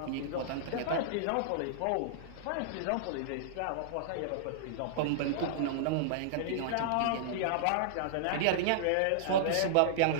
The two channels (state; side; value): different; both; correlation -0.02